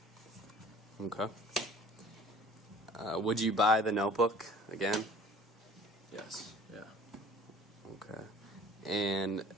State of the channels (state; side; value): normal; both; correlation 0.49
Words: Okay. Would you buy the notebook again? Yes. Yeah. Okay. And